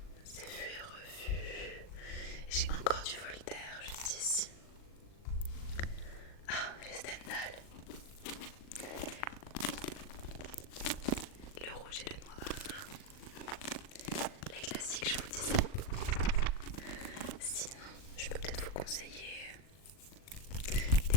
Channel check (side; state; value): right; late; 39 ms